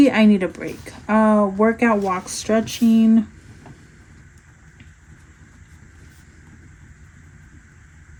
I need a break. Workout, walk, stretching.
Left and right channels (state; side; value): identical; both; correlation 1.00